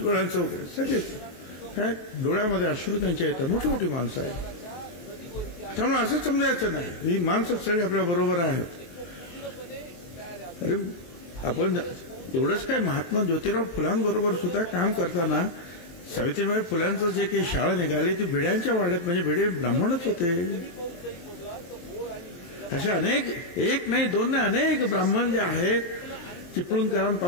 वगैरे सगळेच काय डोळ्यामध्ये अश्रू त्यांच्या येतात. मोठी मोठी माणसं आहेत. त्यामुळे असं समजायचं नाही ही माणसं सगळी आपल्या बरोबर आहेत. अरे आपण एवढंच काय महात्मा ज्योतिराव फुलांबरोबर सुद्धा काम करताना सावित्रीबाई फुलांचं जे काही शाळा निघाली ती भिड्यांच्या वाड्यात म्हणजे भिडे ब्राह्मणच होते. अशा अनेक एक नाही दोन नाही अनेक ब्राह्मण जे आहेत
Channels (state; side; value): late; right; 23 ms